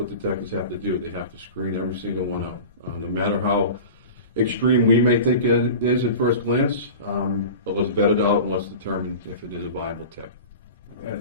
detectives have to do. They have to screen every single one out, no matter how extreme we may think it is at first glance. But let's vet it out and let's determine if it is a viable tip.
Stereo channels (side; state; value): both; inverted; correlation -0.34